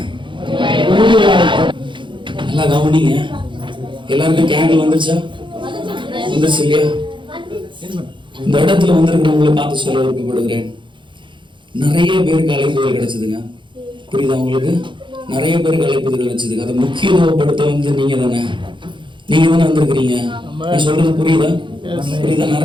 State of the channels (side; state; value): left; late; 0.23 ms